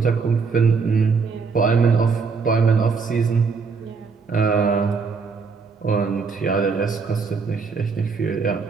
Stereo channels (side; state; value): left; quieter; 5.1 dB